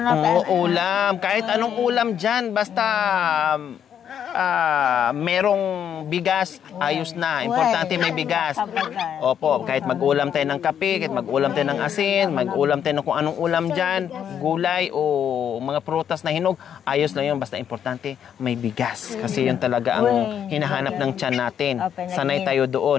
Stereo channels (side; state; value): right; quieter; 8.8 dB